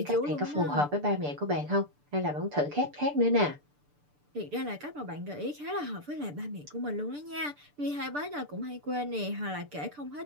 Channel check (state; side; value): late; left; 6.8 ms